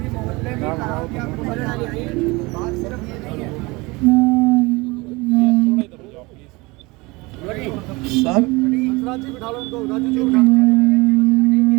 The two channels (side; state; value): left; quieter; 24.1 dB